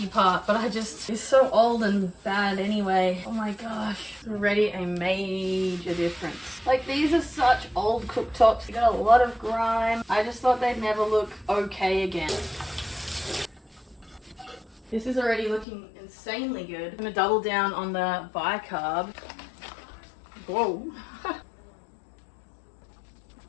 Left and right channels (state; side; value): drops out; right; at 15.7 s